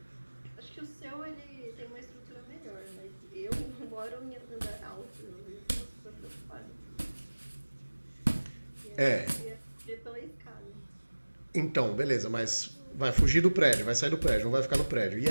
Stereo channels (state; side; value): inverted; both; correlation -1.00